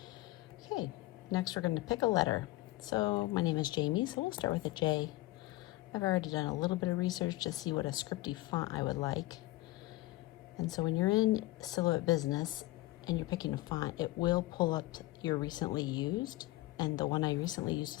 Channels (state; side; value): quieter; right; 18.6 dB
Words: Okay, next we're going to pick a letter. So my name is Jamie, so we'll start with a J. I've already done a little bit of research to see what a scripty font I would like. And so when you're in Silhouette Business and you're picking a font, it will pull up your recently used, and the one I recently used